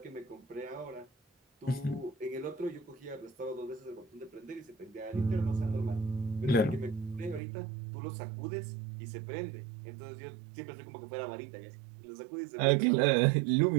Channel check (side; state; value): left; drops out; at 7.4 s